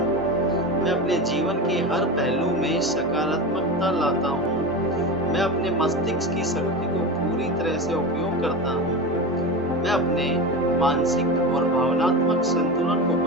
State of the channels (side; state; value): both; normal; correlation 0.24